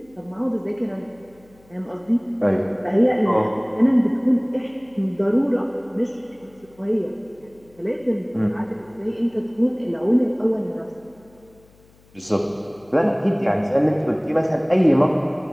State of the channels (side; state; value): left; noise; hum, 29 dB below the sound